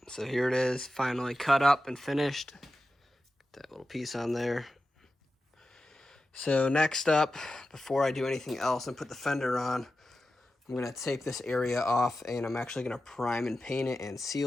so here it is, finally cut up and finished. Get that little piece on there. So next up, before I do anything else and put the fender on, I'm I'm going to tape this area off, and I'm actually going to prime and paint it and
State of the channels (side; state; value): both; normal; correlation 0.92